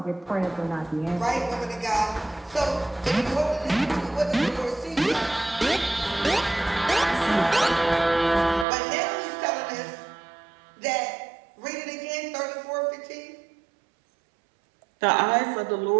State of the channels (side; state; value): left; drops out; at 8.7 s